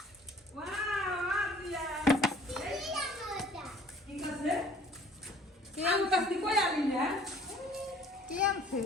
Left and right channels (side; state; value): both; normal; correlation 0.53